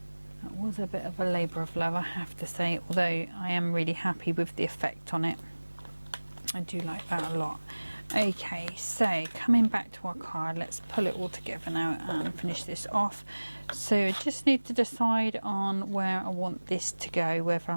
that was a bit of a labour of love, I have to say, although I am really happy with the effect on it. I do like that a lot. Okay, so coming back to our card, let's pull it all together now and finish this off. So I just need to decide on where I want this to go, whether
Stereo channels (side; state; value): both; inverted; correlation -1.00